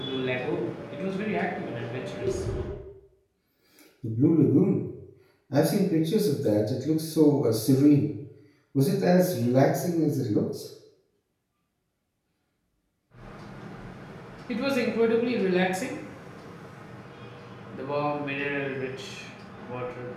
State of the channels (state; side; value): identical; both; correlation 1.00